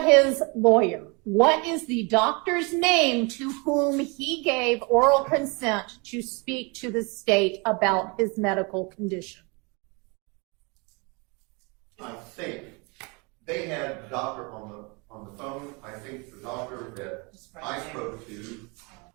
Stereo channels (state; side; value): quieter; left; 30.1 dB